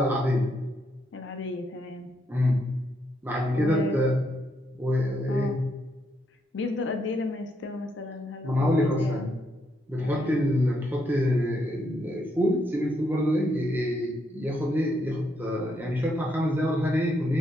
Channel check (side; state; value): both; normal; correlation 0.77